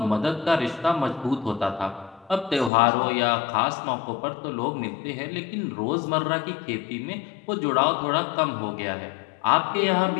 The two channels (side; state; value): right; drops out; at 2.7 s